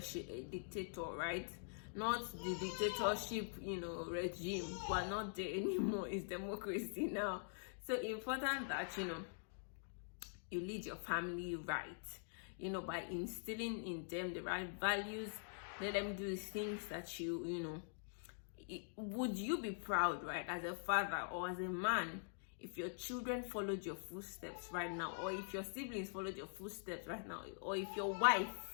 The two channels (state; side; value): silent; right; digital silence